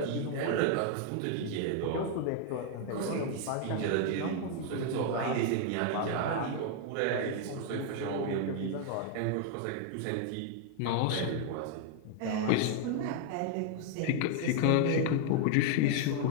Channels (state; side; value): different; both; correlation 0.00